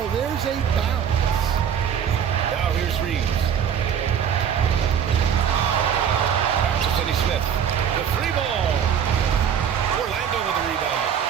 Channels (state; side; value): quieter; left; 8.3 dB